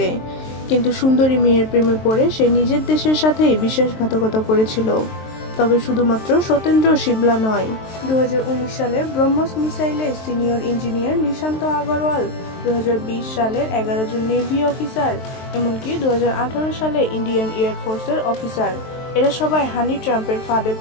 কিন্তু সুন্দরী মেয়ের প্রেমে পড়ে সে নিজের দেশের সাথেই বিশ্বাসঘাতকতা করেছিল। তবে শুধুমাত্র সত্যেন্দ্র শিবলা নয়, 2019 সালে ব্রহ্মস মিসাইলে সিনিয়র ইঞ্জিনিয়ার নিশান্ত আগরওয়াল, 2020 সালের 11 জন নেভি অফিসার, এমনকি 2018 সালে ইন্ডিয়ান এয়ারফোর্সের অফিসার, এরা সবাই হানি ট্রাম্পের ফাঁদে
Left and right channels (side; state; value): right; late; 23 ms